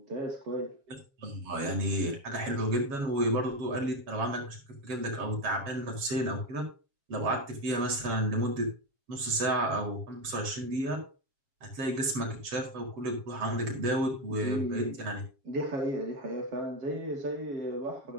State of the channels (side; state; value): left; late; 7.3 ms